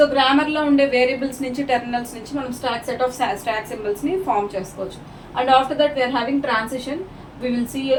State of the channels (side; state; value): both; identical; correlation 1.00